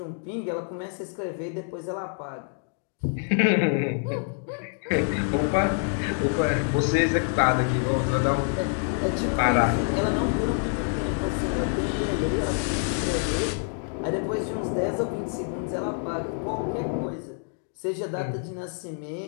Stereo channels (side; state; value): right; silent; 55 dB below the other